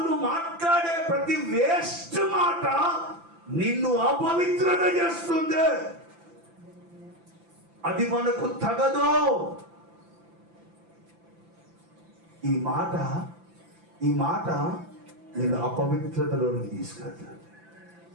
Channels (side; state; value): left; late; 5.9 ms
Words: మాట్లాడే ప్రతి వేస్ట్ మాట నిన్ను అపవిత్రత చేస్తుంది. అది మనకు తగదు. ఈ మాట నేను అపవిత్రతలోనికి తీసుకెళ్తాను.